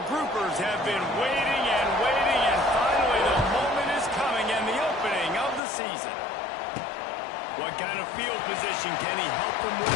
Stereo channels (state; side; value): drops out; right; at 5.6 s